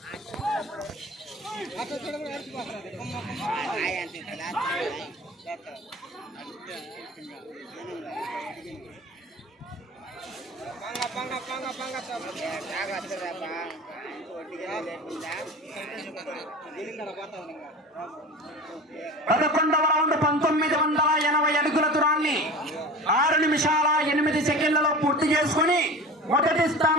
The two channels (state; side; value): normal; both; correlation 0.34